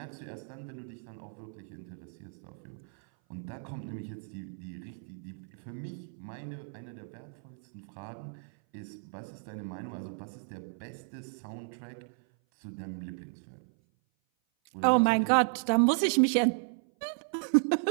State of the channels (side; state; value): left; silent; 55 dB below the other